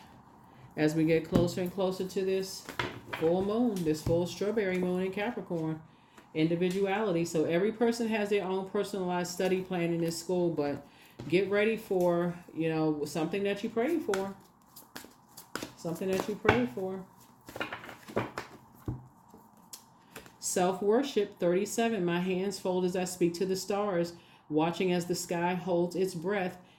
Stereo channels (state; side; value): identical; both; correlation 1.00